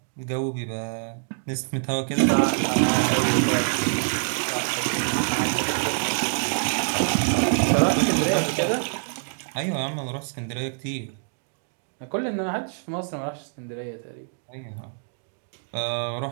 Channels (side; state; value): left; silent; 61 dB below the other